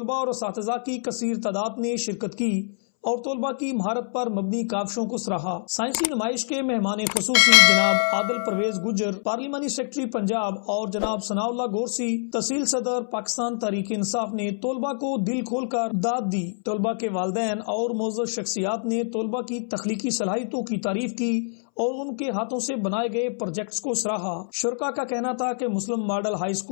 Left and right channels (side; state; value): right; silent; 62 dB below the other